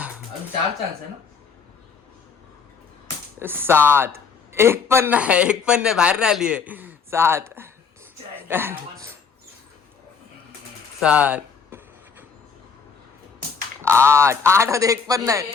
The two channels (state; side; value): quieter; right; 5.8 dB